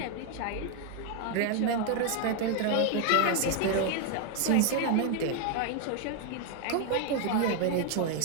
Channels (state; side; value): different; both; correlation 0.00